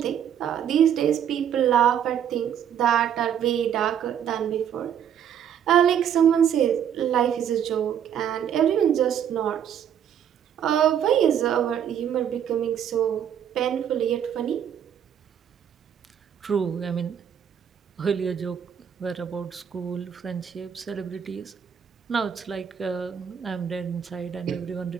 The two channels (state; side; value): quieter; left; 9.0 dB